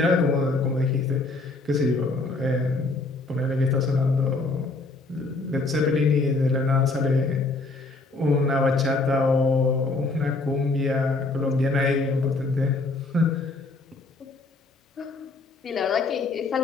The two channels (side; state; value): right; quieter; 3.4 dB